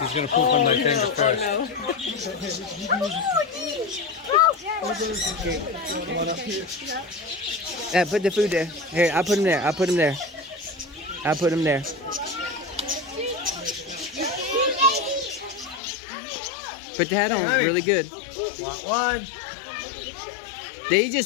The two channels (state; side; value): drops out; right; at 15.8 s